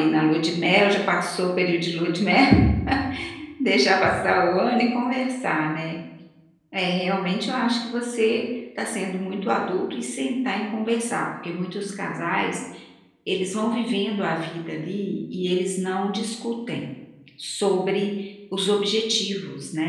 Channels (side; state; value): both; identical; correlation 1.00